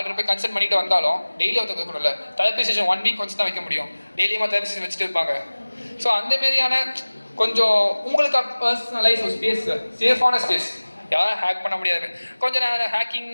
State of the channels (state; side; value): inverted; both; correlation -1.00